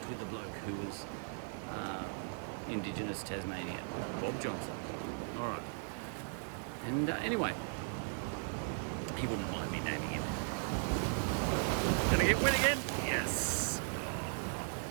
with a bloke who was Indigenous Tasmanian, Bob Johnson. All right. And anyway, he wouldn't mind me naming him. Gonna get wet again? Yes. Oh.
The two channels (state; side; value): silent; left; 53 dB below the other